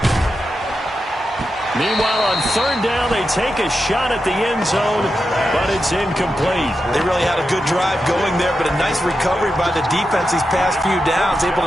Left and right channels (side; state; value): both; normal; correlation 0.88